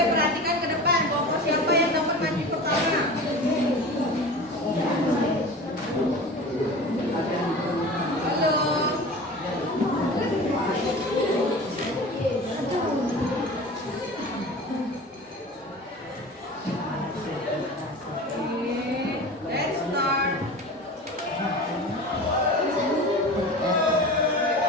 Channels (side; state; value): both; normal; correlation 0.35